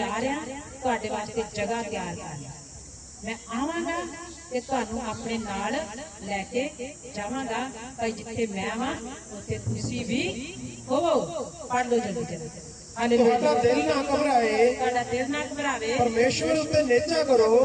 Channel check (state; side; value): identical; both; correlation 1.00